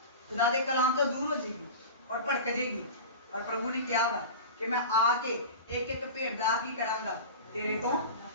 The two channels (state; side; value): inverted; both; correlation -0.32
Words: खुदा के कलाम तो दूर हो जाएगी और भड़क जाएगी। और प्रभु ने क्या कहा कि मैं आके एक एक भेड़ दा की करांगा तेरे को